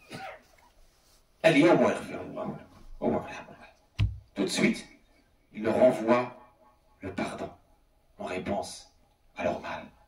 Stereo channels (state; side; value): identical; both; correlation 1.00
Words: Al-yawma yaghfiru Allahu lakum. Tout de suite, il leur envoie le pardon en réponse à leur mal.